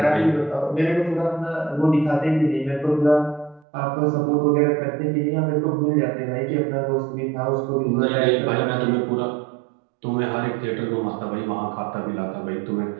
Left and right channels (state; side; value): drops out; left; at 3.7 s